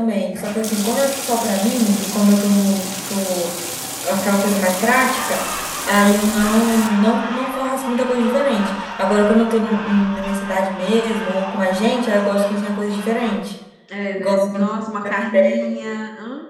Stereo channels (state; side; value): identical; both; correlation 1.00